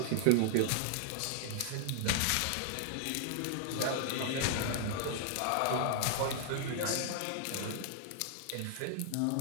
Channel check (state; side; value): different; both; correlation -0.01